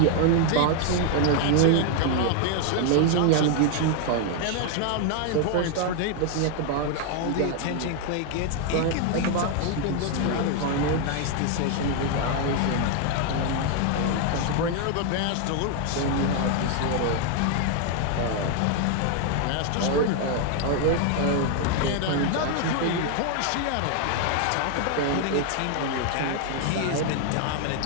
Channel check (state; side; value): different; both; correlation 0.00